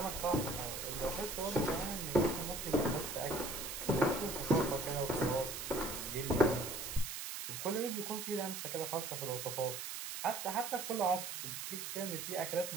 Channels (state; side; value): noise; right; hiss, 6 dB below the sound